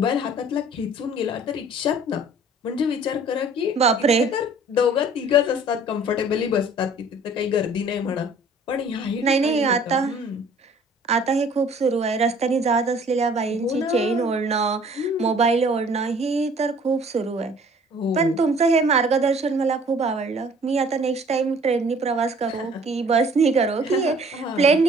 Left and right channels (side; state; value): both; normal; correlation 0.53